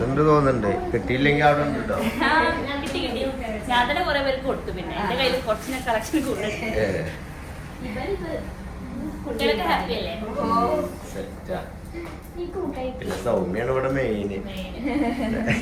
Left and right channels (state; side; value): identical; both; correlation 1.00